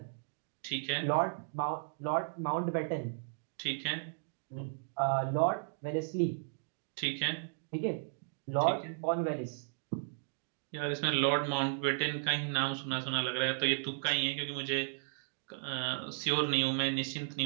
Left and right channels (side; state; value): left; silent; digital silence